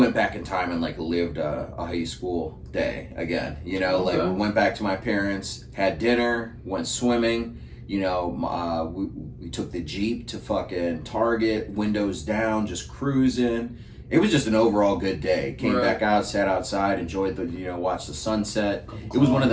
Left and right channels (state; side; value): identical; both; correlation 1.00